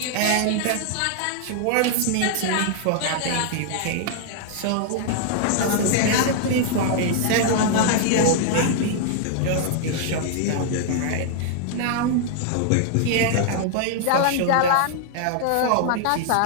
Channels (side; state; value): both; different; correlation 0.00